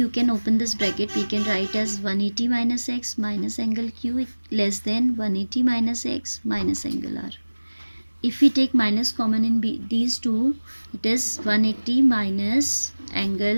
can open this bracket. We can write as 180 minus x minus angle q less than 180 minus x minus angle r. If we take minus common in these two, it is 180 minus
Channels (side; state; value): both; inverted; correlation -1.00